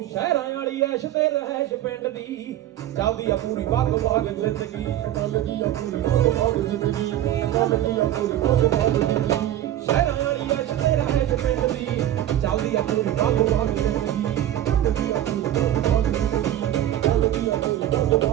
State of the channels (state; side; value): quieter; left; 12.4 dB